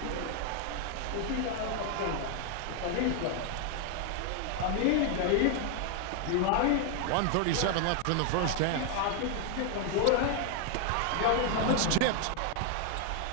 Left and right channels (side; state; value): both; different; correlation 0.00